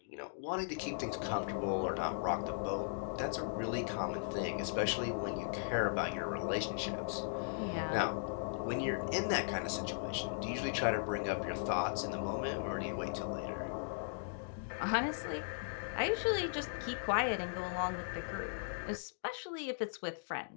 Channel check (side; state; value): right; silent; digital silence